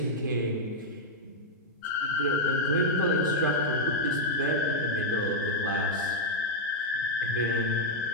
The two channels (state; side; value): normal; both; correlation -0.02